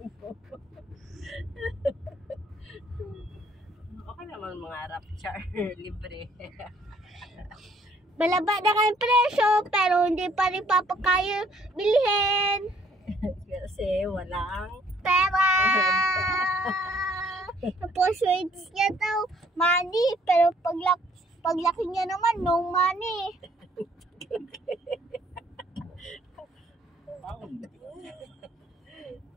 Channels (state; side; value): normal; both; correlation 0.62